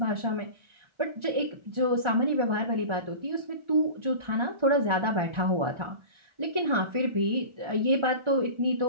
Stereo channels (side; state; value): left; late; 1.4 ms